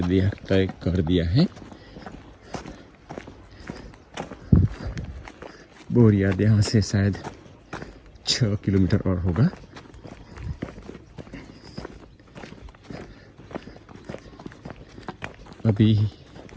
कर दिया है। बोरियाद यहाँ से शायद 6 किलोमीटर और होगा। अभी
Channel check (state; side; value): identical; both; correlation 1.00